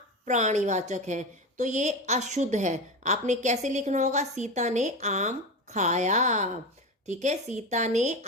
प्राणीवाचक है, तो ये अशुद्ध है। आपने कैसे लिखना होगा, सीता ने आम खाया। ठीक है, सीता ने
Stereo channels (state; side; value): normal; both; correlation 0.22